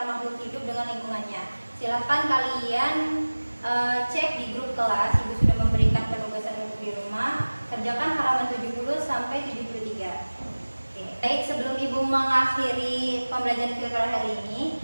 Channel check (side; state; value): both; inverted; correlation -1.00